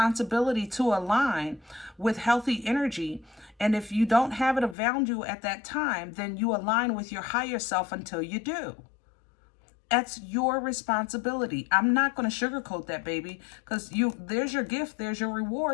to align with healthy energy. And if you don't have it around you at that time, then you align with your higher self until you do. That's your responsibility. I'm not going to sugarcoat that, baby, because there's your gift, there's your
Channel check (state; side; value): drops out; right; at 4.8 s